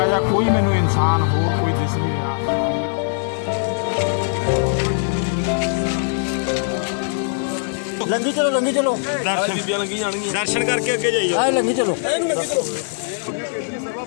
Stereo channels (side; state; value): right; silent; digital silence